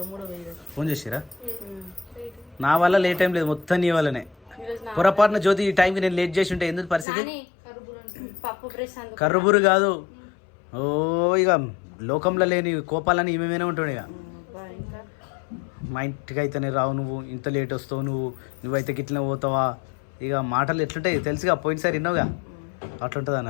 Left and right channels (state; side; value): drops out; right; at 7.1 s